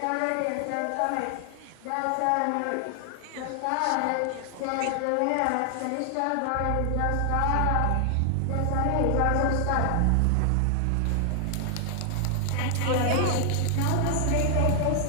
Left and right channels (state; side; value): different; both; correlation 0.00